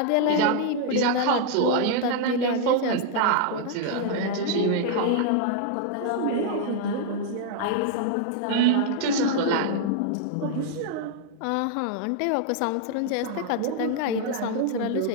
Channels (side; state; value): both; different; correlation 0.00